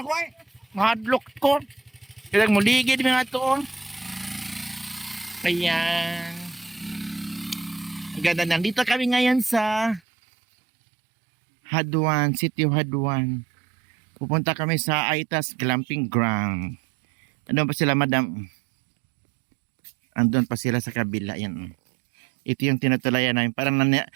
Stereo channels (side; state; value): left; drops out; at 10.0 s